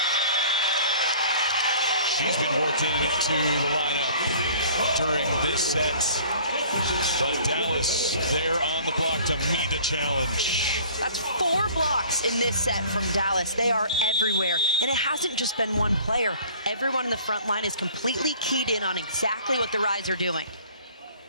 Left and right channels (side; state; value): both; inverted; correlation -0.49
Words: She's been worked into the lineup during this set. But Dallas there on the block to meet the challenge. That's 4 blocks in this set from Dallas. They are everywhere. And it hasn't just been one player. Everyone in the front line is completely keyed in on exactly what the Rise are doing.